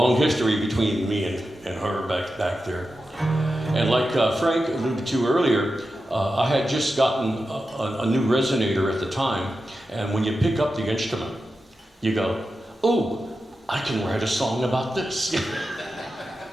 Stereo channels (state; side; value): normal; both; correlation 0.91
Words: history between me and her back there. And like Frank alluded to earlier, I had just gotten a new resonator at the time. And when you pick up the instrument, you go, oh, I can write a song about this. It's